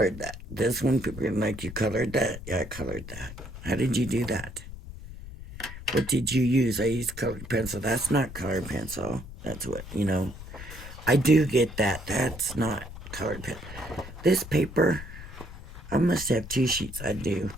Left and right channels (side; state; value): left; noise; rumble, 12 dB below the sound